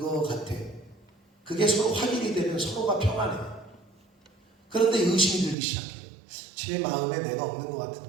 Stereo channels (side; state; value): left; drops out; at 5.6 s